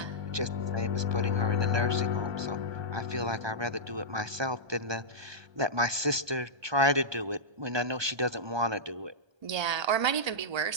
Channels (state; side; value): late; left; 1.2 ms